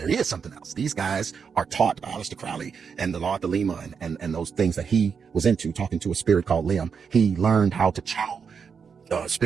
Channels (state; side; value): quieter; left; 6.3 dB